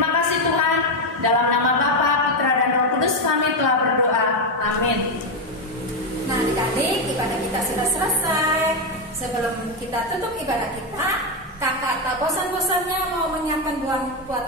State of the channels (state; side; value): normal; both; correlation 0.07